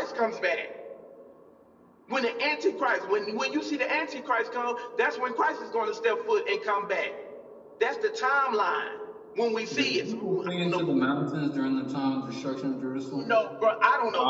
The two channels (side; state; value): both; identical; correlation 1.00